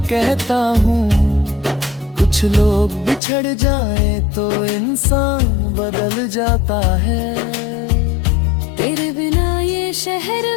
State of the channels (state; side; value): drops out; right; at 3.2 s